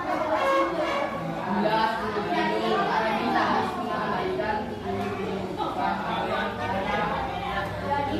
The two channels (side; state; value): both; identical; correlation 1.00